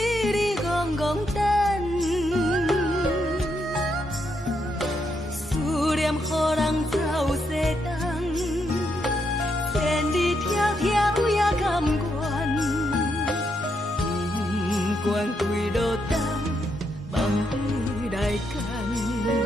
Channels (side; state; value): both; normal; correlation 0.79